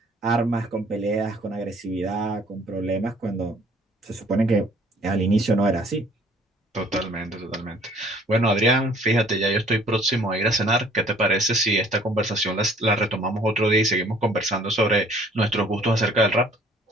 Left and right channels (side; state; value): both; normal; correlation 0.57